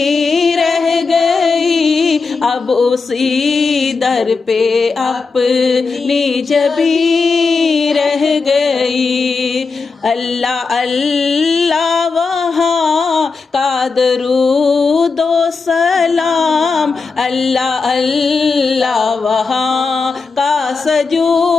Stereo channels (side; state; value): right; quieter; 4.5 dB